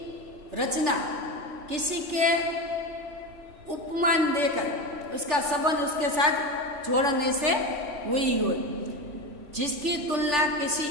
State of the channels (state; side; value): late; left; 3.4 ms